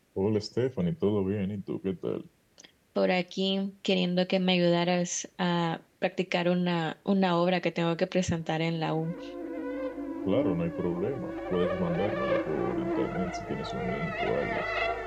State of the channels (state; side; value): identical; both; correlation 1.00